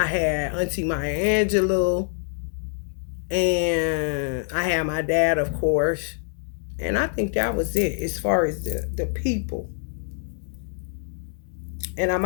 had Auntie Maya Angelou. And I had my dad, of course. And I think that was it as far as the people. And I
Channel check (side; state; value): right; silent; digital silence